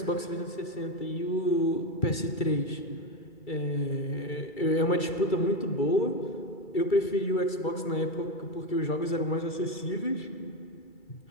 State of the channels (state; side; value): late; right; 2.3 ms